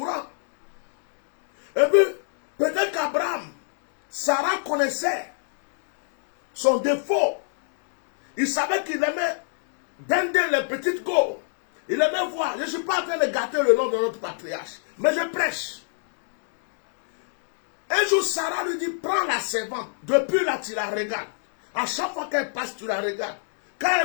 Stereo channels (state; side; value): silent; right; digital silence